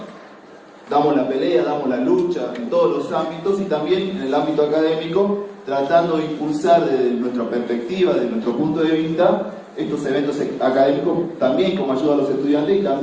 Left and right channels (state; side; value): identical; both; correlation 1.00